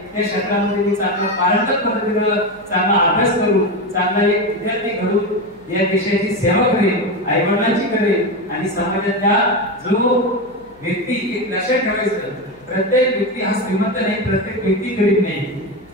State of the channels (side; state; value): left; noise; hum, 30 dB below the sound